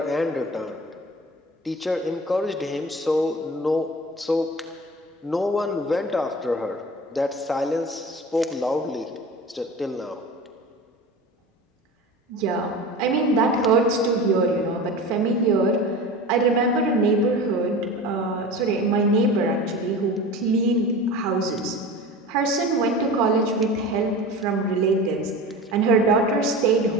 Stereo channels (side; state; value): both; normal; correlation 0.34